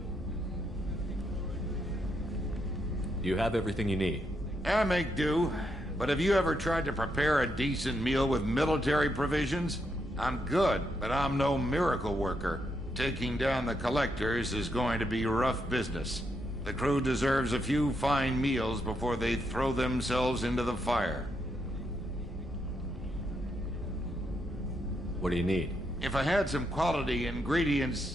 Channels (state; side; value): normal; both; correlation 0.79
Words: Do you have everything you need? I make do. But have you ever tried to prepare a decent meal with military provisions? I'm good, but I'm no miracle worker. Taking down the collectors is going to be rough business. The crew deserves a few fine meals before they throw themselves into the fire. What do you need? If I had some quality